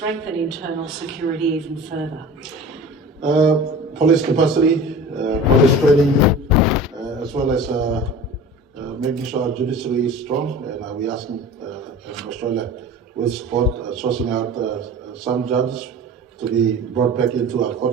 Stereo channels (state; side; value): normal; both; correlation 0.38